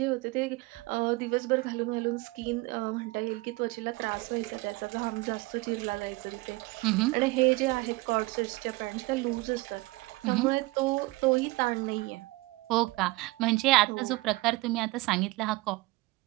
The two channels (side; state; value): left; quieter; 22.6 dB